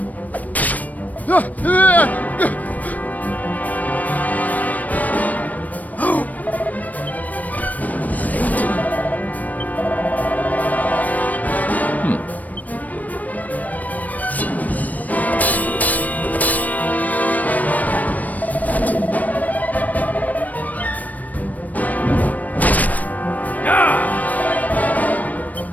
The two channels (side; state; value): right; late; 0.075 ms